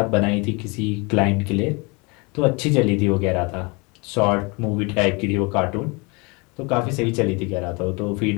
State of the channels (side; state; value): right; quieter; 29.0 dB